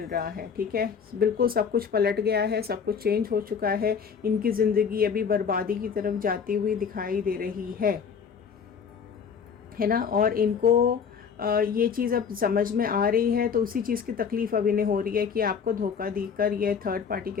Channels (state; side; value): quieter; right; 6.6 dB